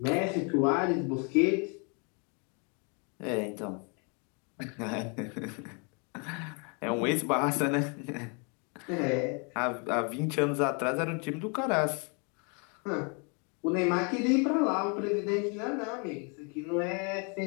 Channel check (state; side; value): quieter; right; 35.4 dB